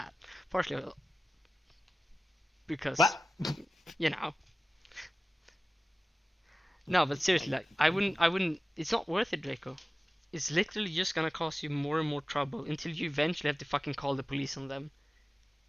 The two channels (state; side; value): normal; both; correlation 0.95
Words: Partially because, What? you know. No, but seriously, like, I wouldn't, it's not worth it, Draco. It's literally just gonna cause you more and more trouble until you eventually have to fucking call the police on them.